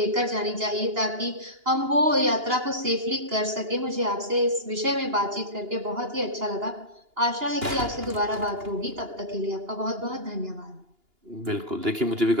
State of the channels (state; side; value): late; left; 2.8 ms